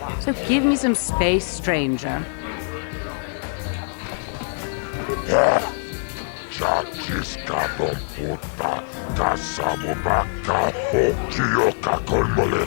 So give me some space, stranger. Chachiskadon puta, kasamo baka hokio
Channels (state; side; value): silent; right; digital silence